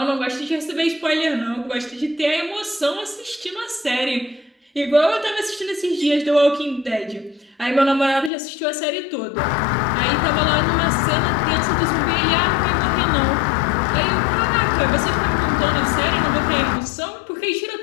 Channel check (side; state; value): right; drops out; at 8.3 s